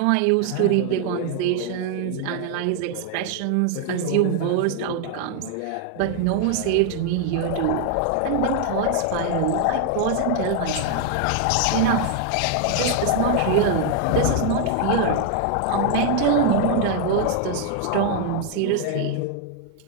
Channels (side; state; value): both; different; correlation 0.00